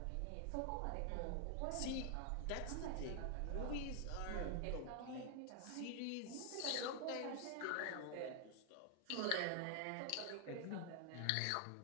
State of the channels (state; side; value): different; both; correlation 0.00